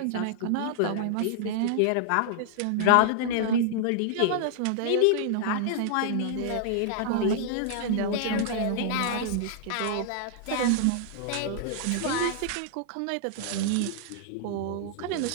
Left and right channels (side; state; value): both; different; correlation -0.01